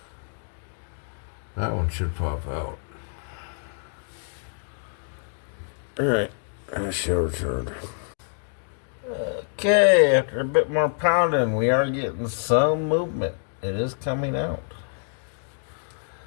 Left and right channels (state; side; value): silent; right; digital silence